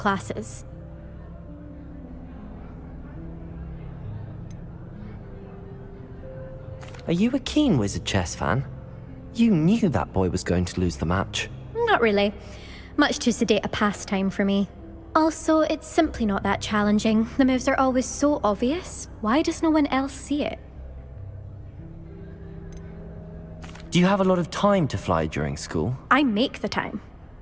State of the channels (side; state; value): both; identical; correlation 1.00